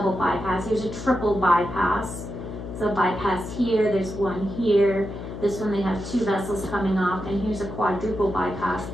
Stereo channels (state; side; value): noise; left; hum, 9 dB below the sound